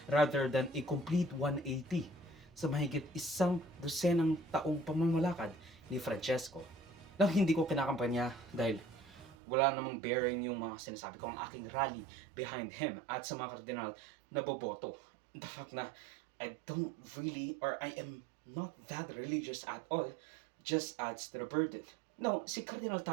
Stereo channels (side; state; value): left; drops out; at 9.3 s